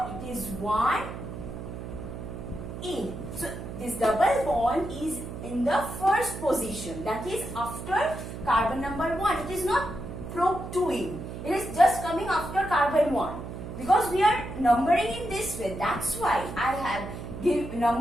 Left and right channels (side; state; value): right; noise; hum, 9 dB below the sound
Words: it is 1 in. So this double bond is in the first position, that is after carbon number 1. It is not prop 2 in. It is just coming after carbon 1. Because we are numbering in this way, that's why I have